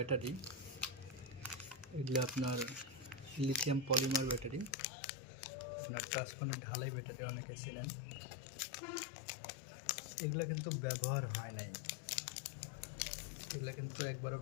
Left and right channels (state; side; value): drops out; right; at 4.8 s